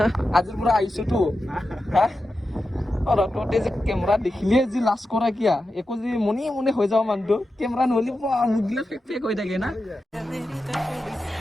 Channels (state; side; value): normal; both; correlation 0.91